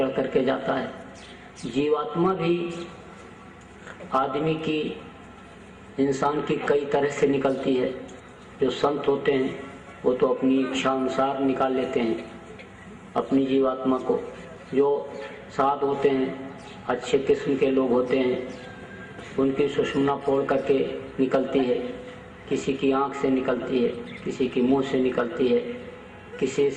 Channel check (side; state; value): both; identical; correlation 1.00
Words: करके जाता है। जीवात्मा भी आदमी की, इंसान की कई तरह से निकलती है। जो संत होते हैं वो तो अपनी इच्छा अनुसार निकाल लेते हैं अपनी जीवात्मा को। जो साध होते हैं, अच्छे किस्म के लोग होते हैं, उनकी सुषुम्ना फोड़ करके निकलती है, किसी की आंख से निकलती है, किसी की मुंह से निकलती है, किसी